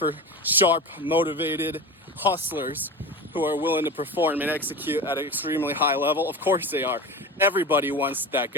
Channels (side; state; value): both; normal; correlation 0.28